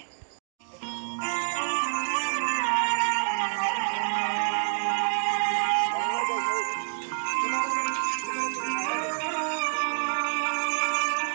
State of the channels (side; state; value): left; silent; digital silence